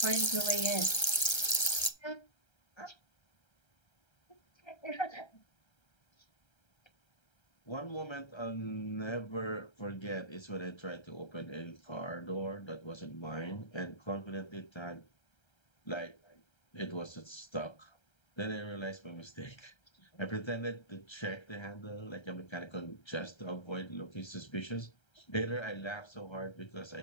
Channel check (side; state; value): right; late; 1.3 ms